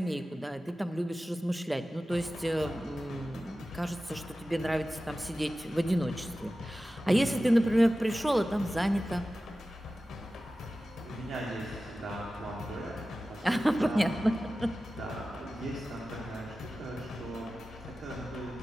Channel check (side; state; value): both; normal; correlation 0.95